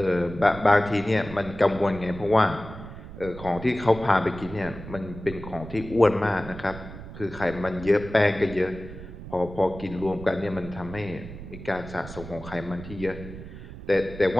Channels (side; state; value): right; noise; rumble, 13 dB below the sound